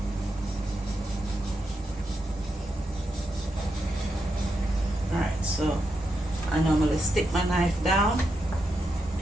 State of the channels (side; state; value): both; normal; correlation 0.84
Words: Alright, so I normally stick my knife down.